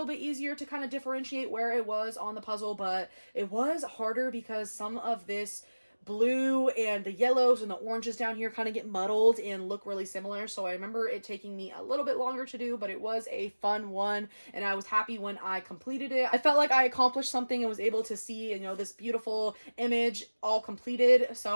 bit easier to kind of differentiate where it was on the puzzle, but it was harder because some of this blue and the yellows and the oranges down here kind of get muddled and look really similar. So I remember it taking me a little bit longer to do, but it was a fun one and I was happy when I completed it. I felt like I accomplished something and was able to see, you know, this beautiful image all completed.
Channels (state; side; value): inverted; both; correlation -1.00